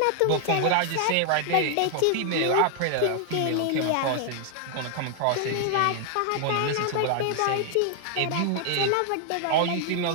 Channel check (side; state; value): both; different; correlation 0.00